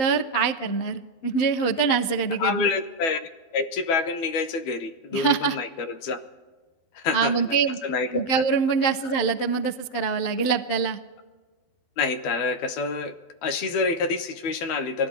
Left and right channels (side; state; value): right; late; 11 ms